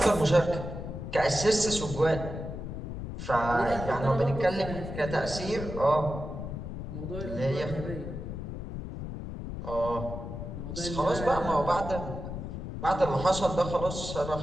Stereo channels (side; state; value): left; noise; rumble, 7 dB below the sound